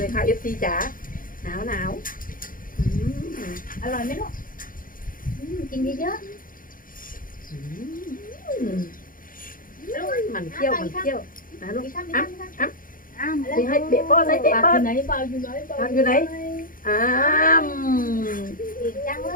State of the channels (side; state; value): right; late; 0.40 ms